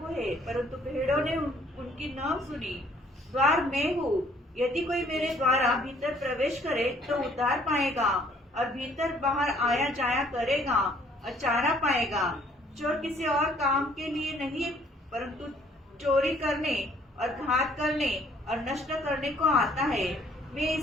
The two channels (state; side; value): normal; both; correlation 0.60